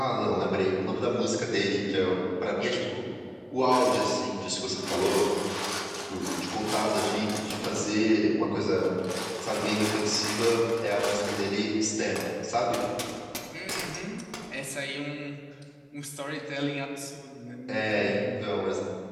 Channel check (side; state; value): both; identical; correlation 1.00